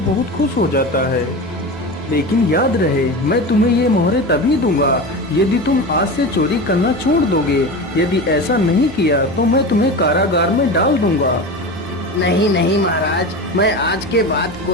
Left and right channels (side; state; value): both; normal; correlation 0.27